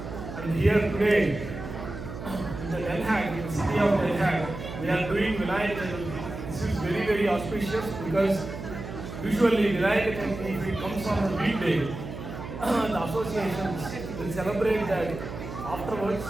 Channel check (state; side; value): noise; right; hum, 9 dB below the sound